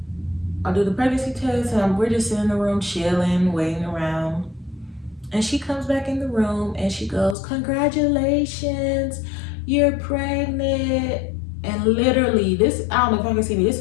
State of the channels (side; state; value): right; drops out; at 7.4 s